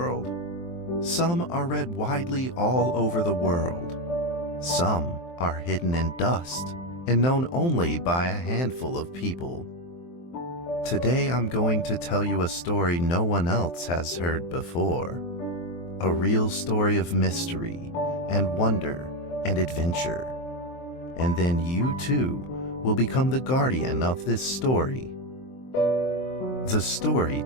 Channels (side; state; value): right; late; 23 ms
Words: Some are read widely all over the world. Some are hidden in dust and known only by a handful of people. Today I'm going to tell you a story no one else has heard before. A real story of mystery and wonder and adventure. And then you too will become the guardian of this story. The story